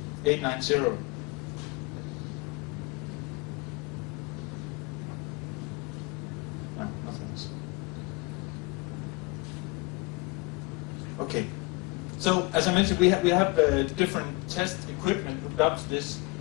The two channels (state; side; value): quieter; right; 26.0 dB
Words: 890. No, nothing else. Okay. So, as I mentioned, we have different test equipment hooked up to this.